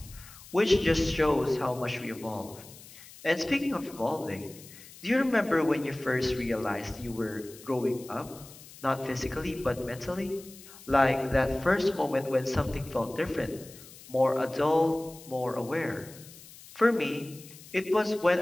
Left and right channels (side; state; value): left; noise; hiss, 19 dB below the sound